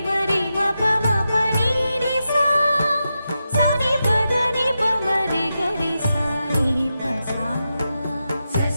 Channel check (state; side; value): inverted; both; correlation -0.89